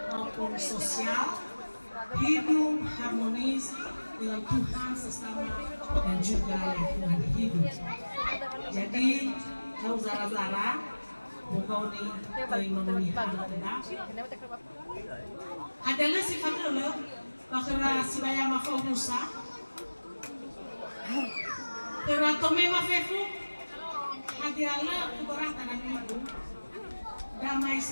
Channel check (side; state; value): both; inverted; correlation -1.00